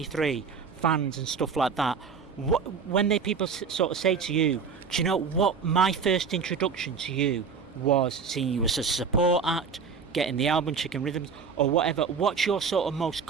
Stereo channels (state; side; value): quieter; left; 5.7 dB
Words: fans and stuff like that, when people sort of say to you, do you know what? My first introduction to you was seeing you as a support act, getting the album Chicken Rhythms or whatever. What's your sort of most